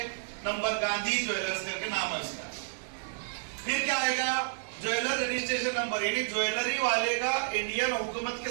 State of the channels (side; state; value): left; silent; digital silence